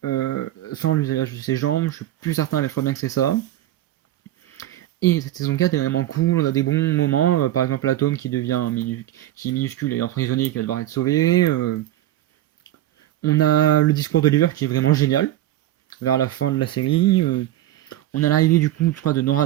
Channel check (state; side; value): quieter; left; 13.7 dB